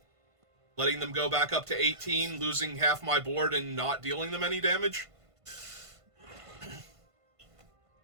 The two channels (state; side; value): late; left; 1.5 ms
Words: Letting them go back up to 18, losing half my board, and not dealing them any damage?